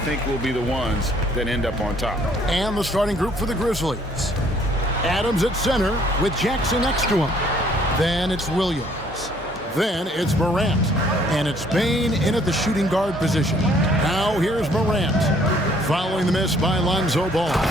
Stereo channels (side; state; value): both; normal; correlation 0.62